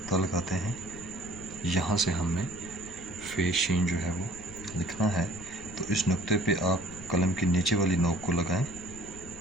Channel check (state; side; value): noise; left; rumble, 18 dB below the sound